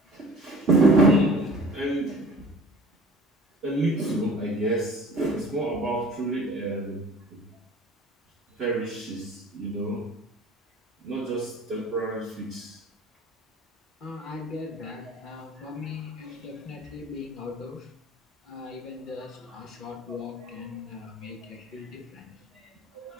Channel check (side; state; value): both; normal; correlation 0.46